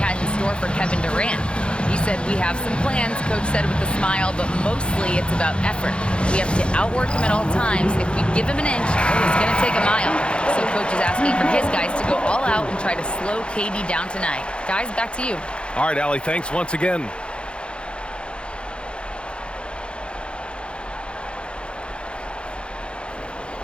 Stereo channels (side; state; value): right; late; 0.056 ms